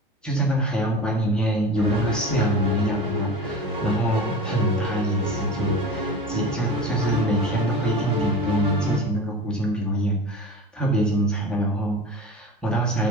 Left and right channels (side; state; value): both; normal; correlation 0.33